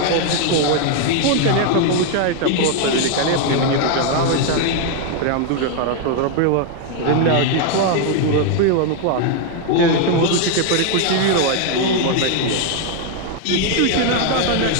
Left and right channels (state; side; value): different; both; correlation 0.01